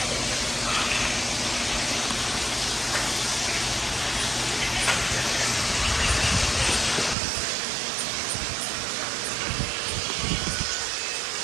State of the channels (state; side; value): drops out; left; at 7.2 s